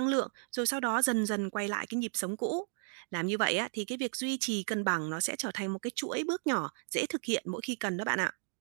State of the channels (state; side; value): silent; left; digital silence